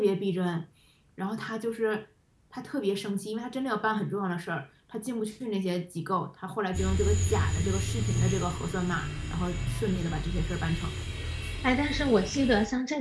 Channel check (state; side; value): identical; both; correlation 1.00